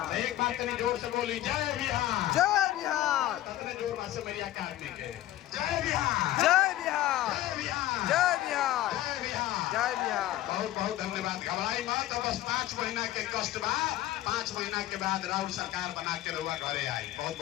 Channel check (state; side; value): quieter; right; 14.6 dB